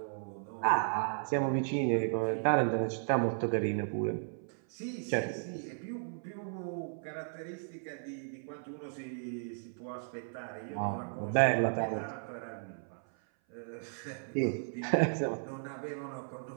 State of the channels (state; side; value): silent; left; 54 dB below the other